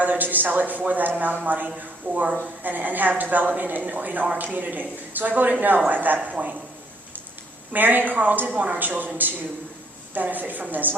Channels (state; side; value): normal; both; correlation 0.66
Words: to sell it for that amount of money and have development in our community. So I voted no at that point. Marion Carl did want our children to benefit from this.